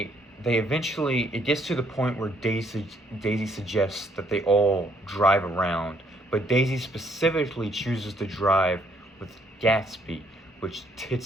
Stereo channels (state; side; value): normal; both; correlation 0.68